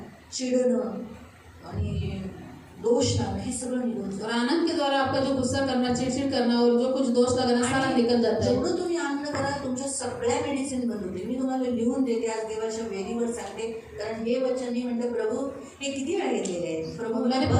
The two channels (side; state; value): both; identical; correlation 1.00